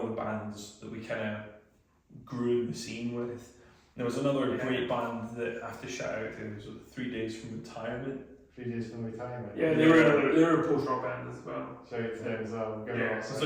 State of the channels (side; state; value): both; identical; correlation 1.00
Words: the bands that we kind of grew in the scene with. There was another great band that I have to shout out to. It was 3 Days from Retirement. 3 Days from Retirement. Yeah, they were a post-rock band as well. Shout out to them as well.